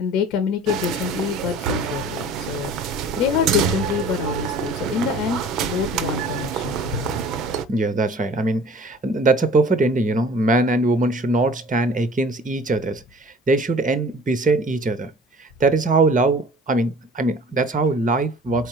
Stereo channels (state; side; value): normal; both; correlation 0.47